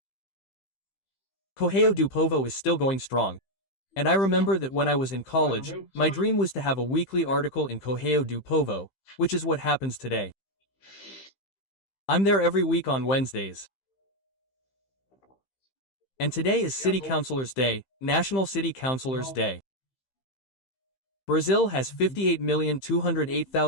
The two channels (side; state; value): right; late; 15 ms